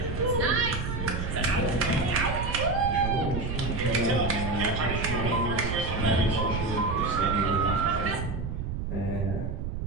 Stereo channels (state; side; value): noise; right; rumble, 3 dB below the sound